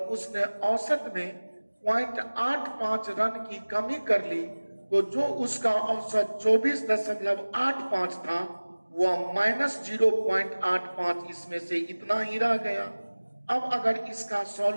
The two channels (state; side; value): inverted; both; correlation -1.00